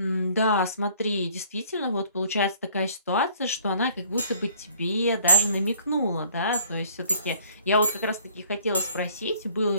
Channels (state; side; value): inverted; both; correlation -0.56